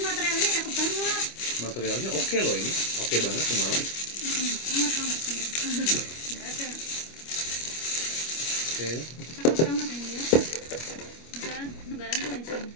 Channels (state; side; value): late; right; 25 ms